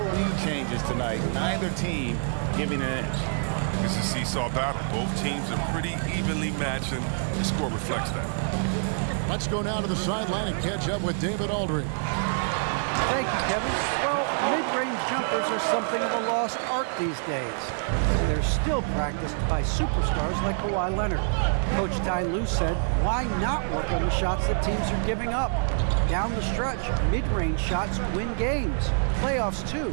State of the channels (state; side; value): silent; left; digital silence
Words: lead changes tonight. Neither team giving an inch. It's a seesaw battle. Both teams are pretty evenly matched, and the score reflects that. Let's go now to the sideline and catch up with David Aldridge. Thank you, Kevin. Well, mid-range jumpers are something of a lost art these days. They're still practiced by superstars like Kawhi Leonard. Coach Ty Lue said, why not work on the shots that teams are giving up? Down the stretch, mid-range shots win games. Playoffs, too.